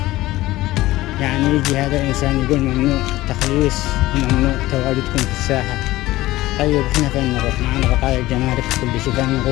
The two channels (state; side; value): quieter; right; 17.3 dB